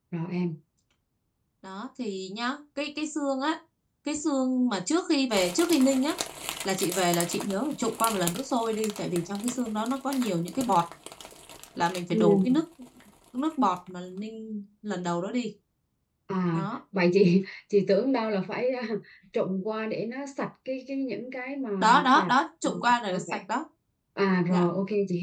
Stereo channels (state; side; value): identical; both; correlation 1.00